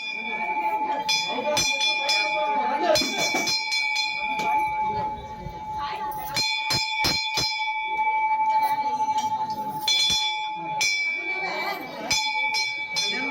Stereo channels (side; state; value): both; identical; correlation 1.00